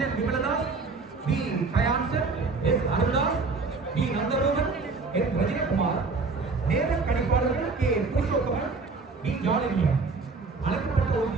Vimaladas, P Gayanson, S Aruldas, P Nantharohan, S Rajinakumar, நேர கணிப்பாளர்கள் கே புருஷோத்தமன், பி ஜாலினியம். அழைக்கப்பட்ட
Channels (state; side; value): quieter; left; 4.1 dB